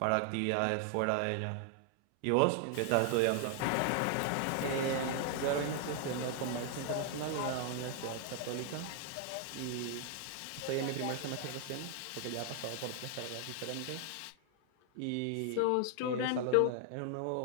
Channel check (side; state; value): both; different; correlation 0.00